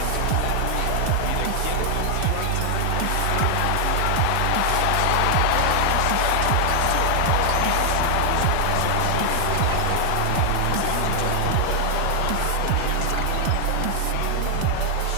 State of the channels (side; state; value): both; different; correlation 0.00